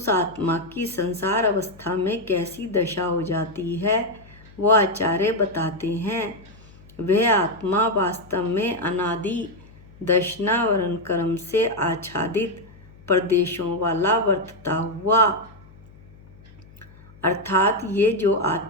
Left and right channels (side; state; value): left; noise; hum, 23 dB below the sound